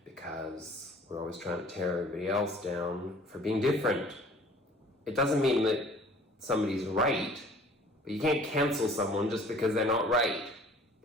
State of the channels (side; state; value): both; normal; correlation 0.51